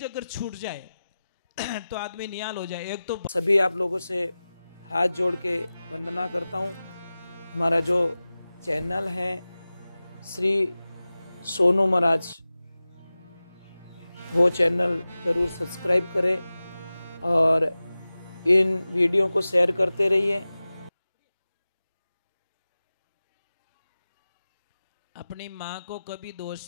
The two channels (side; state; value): both; inverted; correlation -0.96